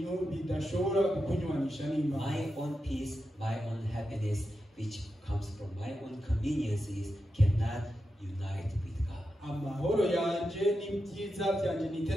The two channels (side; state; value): both; normal; correlation 0.89